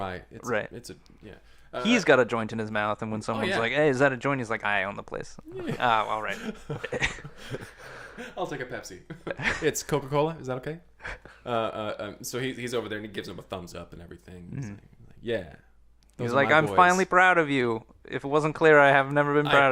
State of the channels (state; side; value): identical; both; correlation 1.00